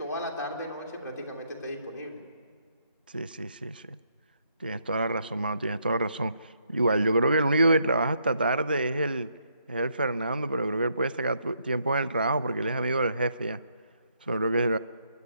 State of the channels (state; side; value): inverted; both; correlation -0.74